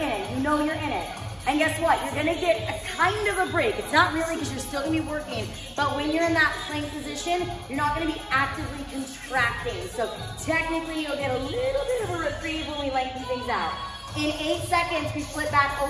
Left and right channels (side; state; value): both; identical; correlation 1.00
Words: it. You know you're in it. And guess what? You're gonna get a kind of a break. It's not really because you're still gonna be working, but when you're in that plank position, you're not gonna be actively contracting. So technically you'll get a little bit of a reprieve when we lengthen things out. In 8 seconds, we flip back